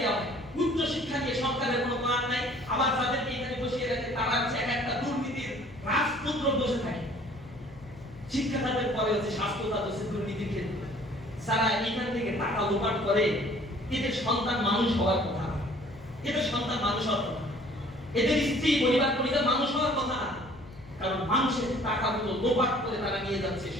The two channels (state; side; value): noise; left; hum, 20 dB below the sound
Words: হয়। উচ্চ শিক্ষা নিয়ে সরকারের কোনো প্ল্যান নাই। আবার যাদেরকে এখানে বসিয়ে রাখে তারা হচ্ছে একটা দুর্নীতির রাজপুত্র বসে থাকে। শিক্ষা খাতের পরে হচ্ছে স্বাস্থ্য খাত, হচ্ছে দুর্নীতির ক্ষেত্র। যারা এখান থেকে টাকা লোপাট করে, এদের সন্তান মানুষ হওয়ার কথা না, এদের সন্তান মানুষ হওয়ার কথা, এদের স্ত্রী পরিবার পরিবার মানুষ হওয়ার কথা না। কারণ মানুষের টাকাগুলো লোপাট করে তারা নিয়ে যাচ্ছে।